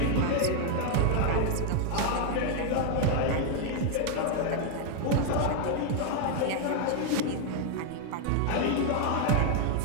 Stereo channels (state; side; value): different; both; correlation 0.00